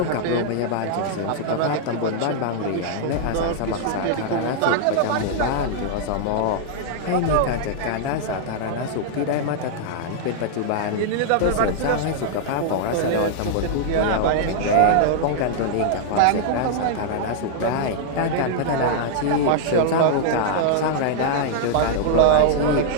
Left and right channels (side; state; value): both; different; correlation -0.01